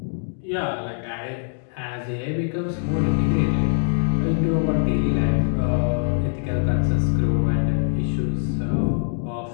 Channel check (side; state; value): right; silent; digital silence